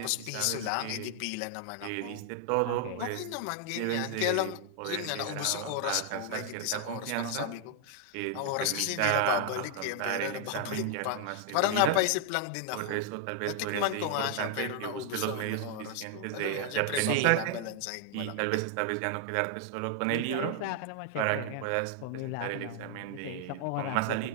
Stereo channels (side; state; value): both; different; correlation 0.00